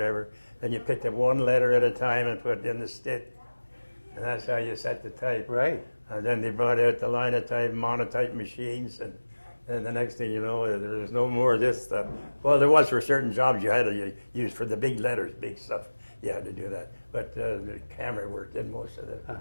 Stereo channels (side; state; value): both; inverted; correlation -1.00